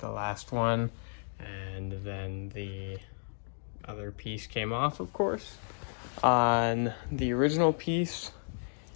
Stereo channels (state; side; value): silent; right; digital silence